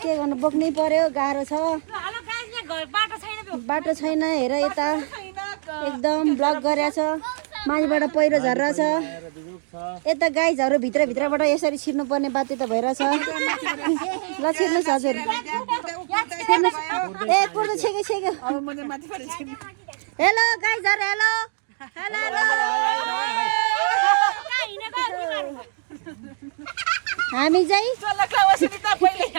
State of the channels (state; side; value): silent; left; digital silence